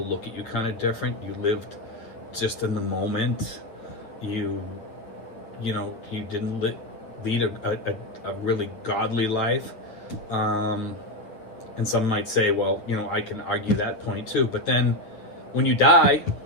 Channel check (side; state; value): right; late; 9.1 ms